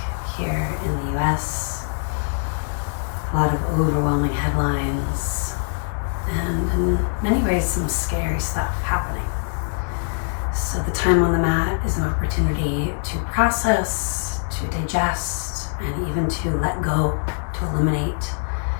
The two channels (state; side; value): silent; right; 63 dB below the other